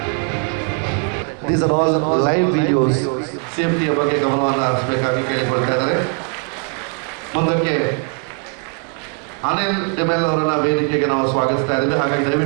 These are all live videos. ಸೇಫ್ಟಿಯ ಬಗ್ಗೆ ಗಮನವನ್ನು ಹರಿಸಬೇಕಾಗಿ ಕೇಳಿಕೊಳ್ತಾ ಇದ್ದಾರೆ. ಮುಂದಕ್ಕೆ ಅನಿಲ್ ಡಿಮೆಲ್ ಅವರನ್ನ ವೇದಿಕೆಗೆ ನಾವು ಸ್ವಾಗತಿಸ್ತಾ ಇದ್ದೇವೆ. ಹಾಗಾಗಿ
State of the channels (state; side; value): quieter; left; 38.0 dB